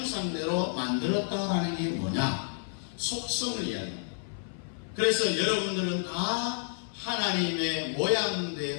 만들었다라는 게 뭐냐? 속성을 이야기합니다. 그래서 여러분들은 다 하나님의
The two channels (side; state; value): right; silent; 58 dB below the other